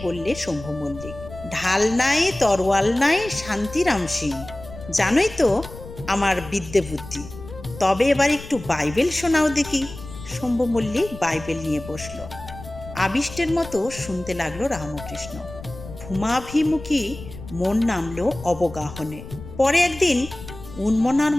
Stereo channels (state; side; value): noise; left; rumble, 14 dB below the sound